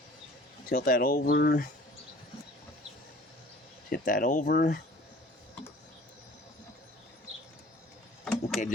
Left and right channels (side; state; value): both; normal; correlation 0.49